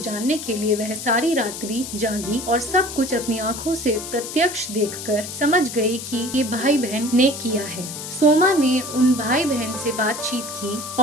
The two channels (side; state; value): left; noise; hiss, 9 dB below the sound